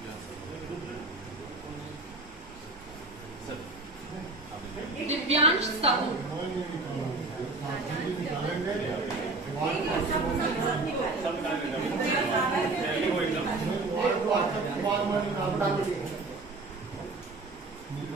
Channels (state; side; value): quieter; left; 3.3 dB